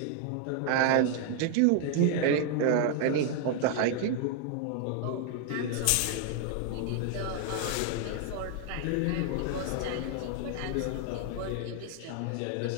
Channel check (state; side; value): different; both; correlation 0.00